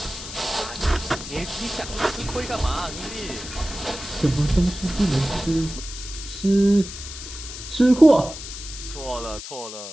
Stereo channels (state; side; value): noise; left; hiss, 11 dB below the sound